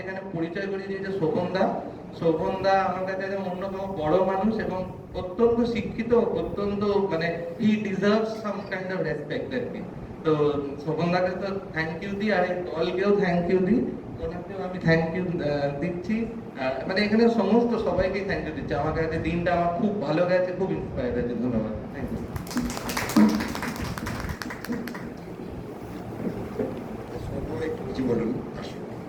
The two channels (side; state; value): both; identical; correlation 1.00